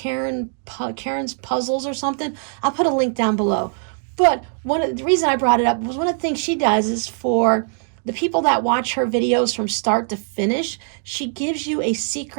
Puzzles or something. I'll put a link down below. But the reason I brought it up was one of the things she does is for the people that watch her videos from start to finish, she gives you a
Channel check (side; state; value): left; silent; 55 dB below the other